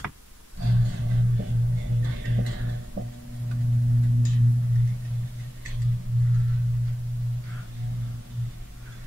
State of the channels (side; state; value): both; normal; correlation 0.96